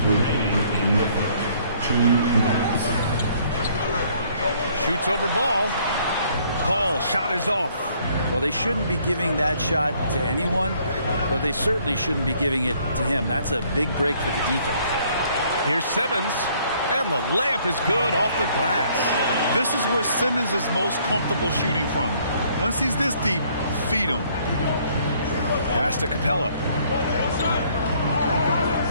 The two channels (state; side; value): inverted; both; correlation -0.63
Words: remaining in the first. 2 minutes. Shoots over Ball. Paul, shot is off. Well, they shouldn't be giving that shot to anyone, but they certainly shouldn't be giving it to him. That's a big break for the defense. Here's Simmons, and the layup is good off the glass. This is where Simmons is most comfortable shooting from. Once he's this deep, feed him. Pass to Capella.